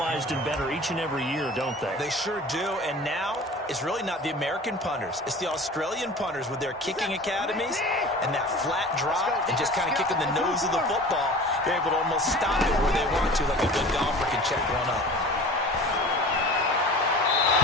and better each and every year, don't they? They sure do. And now, it's really not the American punters. It's the Australian punters with their kicking academies and that flat drop and just kind of kicking the nose of the football. They're able to almost stop it where they want to, like a good golfer can check one up.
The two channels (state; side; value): normal; both; correlation 0.40